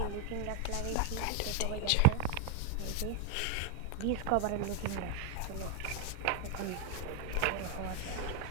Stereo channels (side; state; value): both; different; correlation 0.00